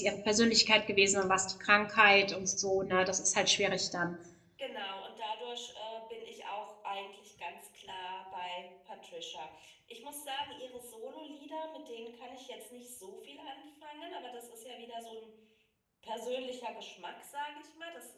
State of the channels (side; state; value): both; identical; correlation 1.00